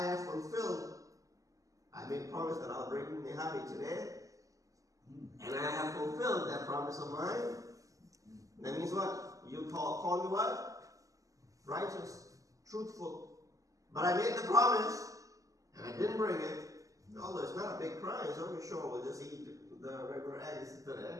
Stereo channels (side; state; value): left; late; 0.16 ms